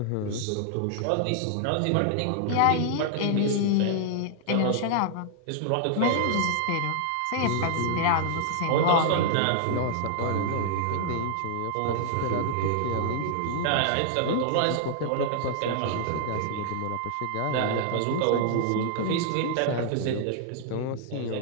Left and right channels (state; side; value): different; both; correlation -0.01